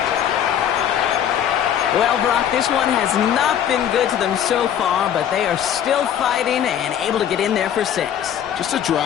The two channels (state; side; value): quieter; right; 9.6 dB